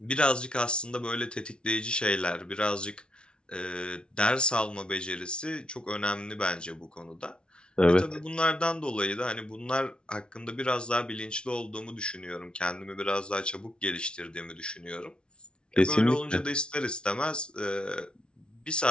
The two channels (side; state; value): right; late; 0.056 ms